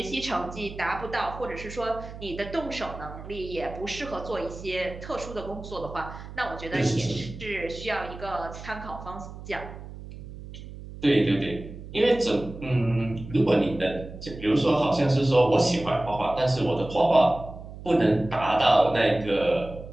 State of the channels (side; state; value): right; noise; hum, 13 dB below the sound